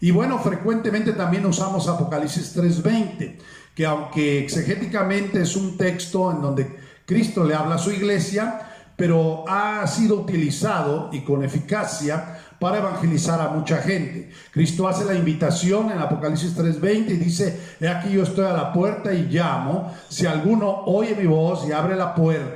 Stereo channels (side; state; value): both; identical; correlation 1.00